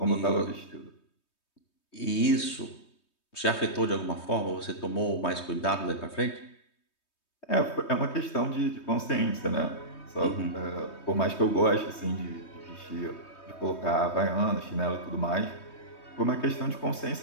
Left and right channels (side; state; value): right; late; 3.2 ms